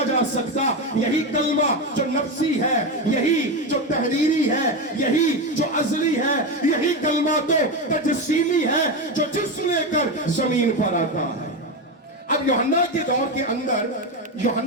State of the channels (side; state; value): both; normal; correlation 0.15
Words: جا سکتا یہی کلمہ جو نفسی ہے یہی جو تحریری ہے یہی جو ازلی ہے یہی کلمہ تو تجسیمی ہے جو جسم لے کر زمین پر آتا ہے اب یوحنا